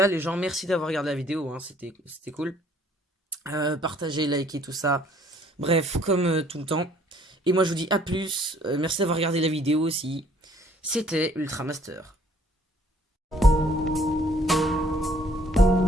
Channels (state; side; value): normal; both; correlation 0.60